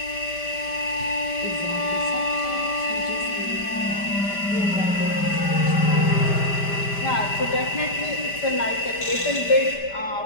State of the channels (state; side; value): late; right; 5.1 ms